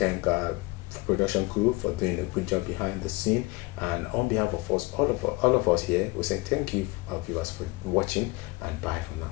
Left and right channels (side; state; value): right; quieter; 23.7 dB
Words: production crew for doing a good job behind the scene, and on behalf of us, all of us here, we say thank you, viewers, for watching, and bye for